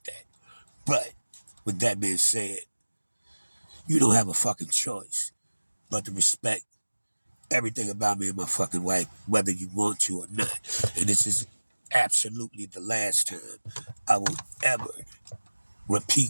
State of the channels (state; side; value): inverted; both; correlation -1.00